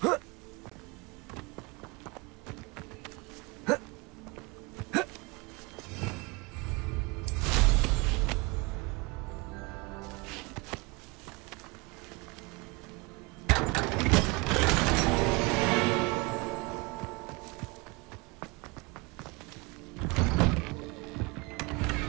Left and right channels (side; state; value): left; quieter; 26.5 dB